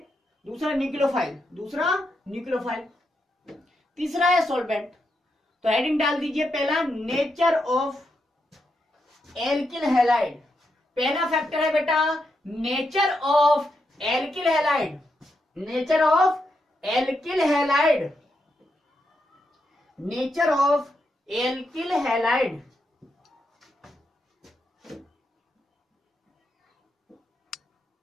दूसरा न्यूक्लियोफाइल, तीसरा है सॉल्वेंट। तो हेडिंग डाल दीजिए पहला, नेचर ऑफ एल्किल हैलाइड। पहला फैक्टर है बेटा nature of alkyl halide, nature of alkyl halide, nature of alkyl halide.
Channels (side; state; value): both; normal; correlation 0.83